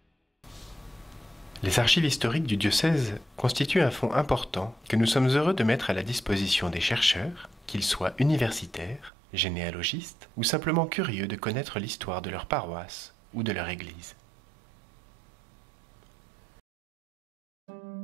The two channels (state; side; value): drops out; left; at 9.1 s